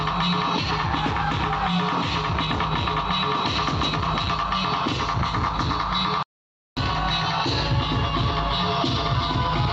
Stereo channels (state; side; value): identical; both; correlation 1.00